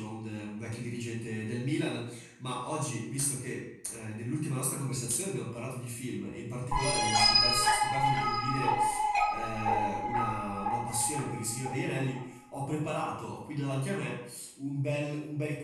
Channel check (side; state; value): both; identical; correlation 1.00